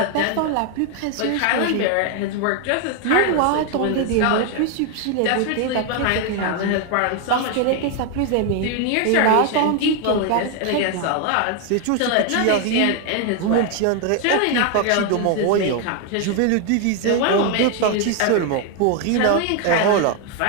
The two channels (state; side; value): different; both; correlation 0.01